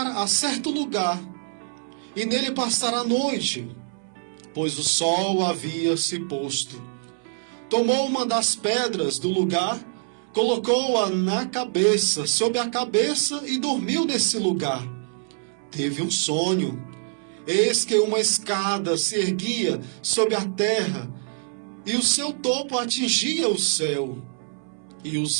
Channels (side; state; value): left; silent; 62 dB below the other